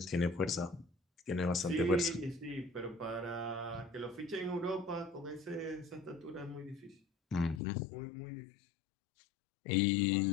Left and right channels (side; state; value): right; drops out; at 7.6 s